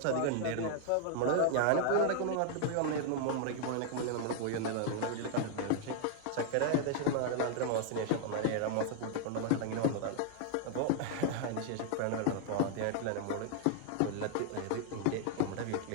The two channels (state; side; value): different; both; correlation -0.01